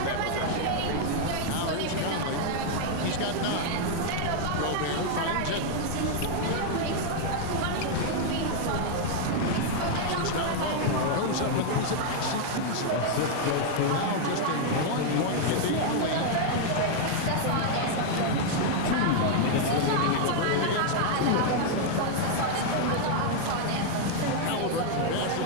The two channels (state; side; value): different; both; correlation 0.00